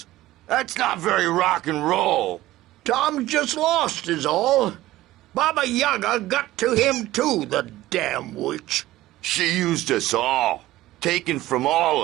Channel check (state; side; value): quieter; left; 16.2 dB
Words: That's not very rock and roll. Tom just lost is all. Baba Yaga got to him too, the damn witch. She used us all. Taken from all